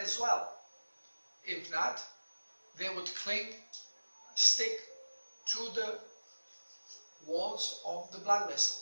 well. If not, they would stick to the walls of the blood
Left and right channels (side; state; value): both; inverted; correlation -1.00